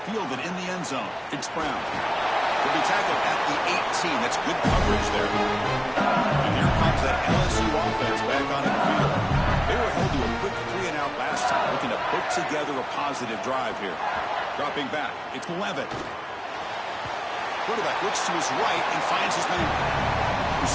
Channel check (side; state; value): both; identical; correlation 1.00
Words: Fielded in the end zone. It's Brown. He'll be tackled at the 18. That's good coverage there. And here comes that LSU offense back onto the field. They were held to a quick 3-and-out last time, looking to put together a positive drive here. Dropping back, it's Levitt. Quarterback looks to his right and finds his man.